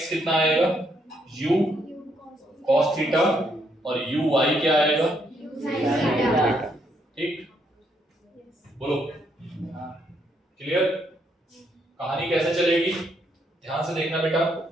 कितना आएगा? u cos थीटा और uy क्या आएगा? ठीक, बोलो। क्लियर? कहानी कैसे चलेगी ध्यान से देखना बेटा।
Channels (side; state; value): both; normal; correlation 0.74